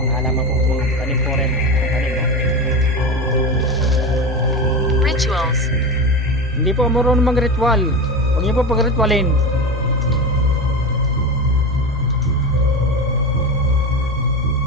halaman po, mga tanim po rin. Tanim, no? Rituals. Hindi po marunong mag-ritual. Huwag niyo po pag-ritualin.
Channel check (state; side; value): normal; both; correlation 0.22